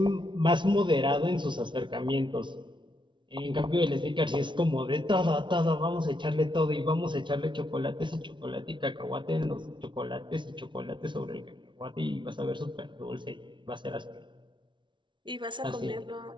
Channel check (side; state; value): left; late; 0.24 ms